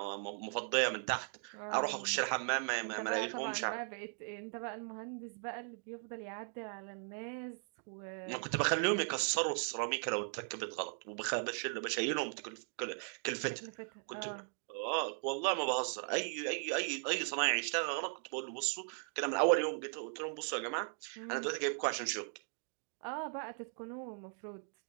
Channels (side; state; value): left; silent; 52 dB below the other